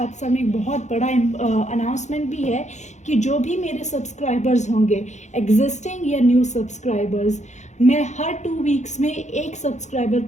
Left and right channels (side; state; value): right; late; 0.34 ms